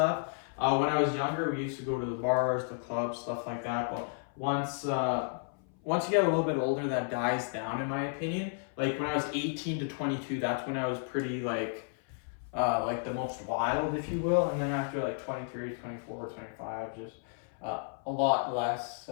When I was younger, we used to go to the bars, the clubs, stuff like that. But once you get a little bit older, that dies down, in my opinion. Like when I was 18 to 22, that's when I was pretty like the most wild, if you will. And then after like 23, 24, 25, just a lot less,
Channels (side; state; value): right; silent; 56 dB below the other